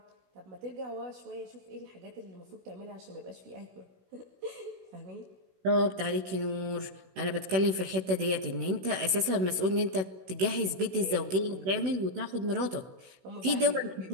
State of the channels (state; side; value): late; left; 16 ms